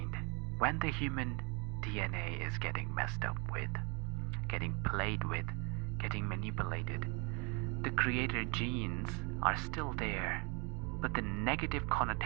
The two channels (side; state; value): left; quieter; 31.2 dB